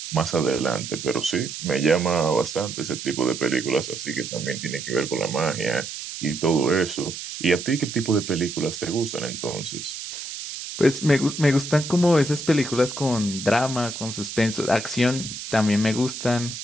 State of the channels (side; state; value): right; noise; hiss, 8 dB below the sound